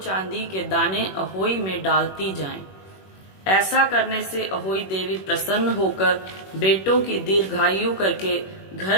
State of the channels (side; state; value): right; late; 21 ms